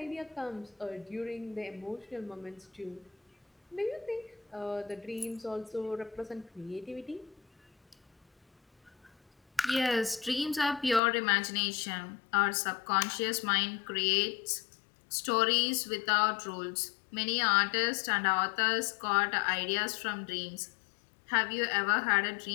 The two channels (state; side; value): drops out; right; at 11.0 s